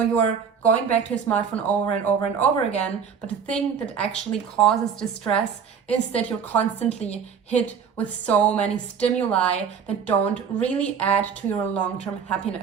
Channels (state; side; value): quieter; left; 6.9 dB